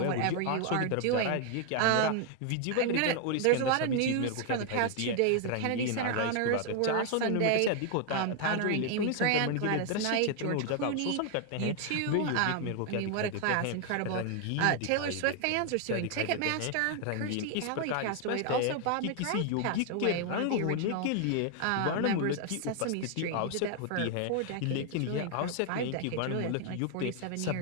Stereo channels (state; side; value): different; both; correlation 0.00